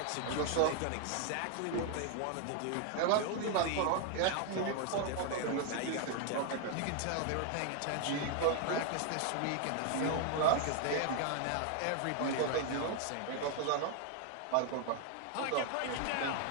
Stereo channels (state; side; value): different; both; correlation 0.00